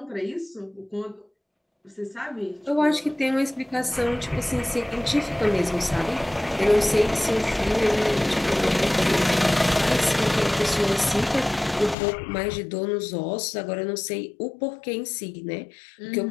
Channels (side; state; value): right; drops out; at 12.0 s